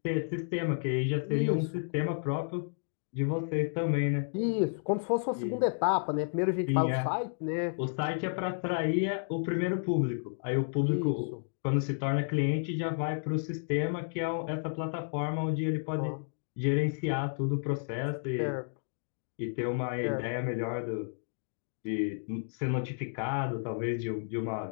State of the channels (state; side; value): silent; right; digital silence